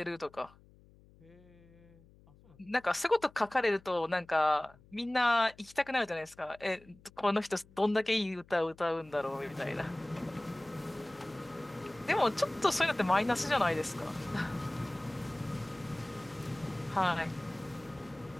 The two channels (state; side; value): noise; left; hum, 26 dB below the sound